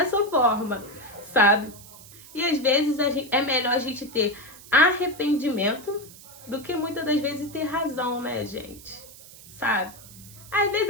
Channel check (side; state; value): right; noise; hiss, 19 dB below the sound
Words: forma, sabe? E às vezes é melhor a gente ter arrependimento do que muitas das vezes ter razão, né, gente? Sabe? Às vezes